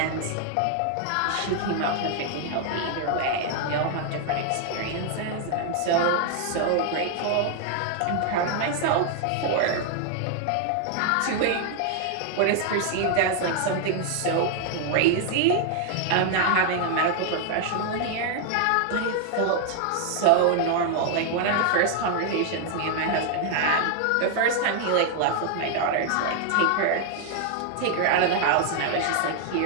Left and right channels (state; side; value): different; both; correlation 0.00